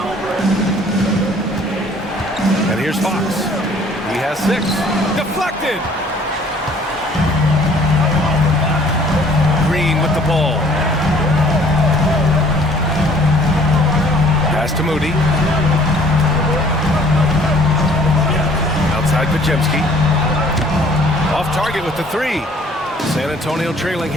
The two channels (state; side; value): normal; both; correlation 0.56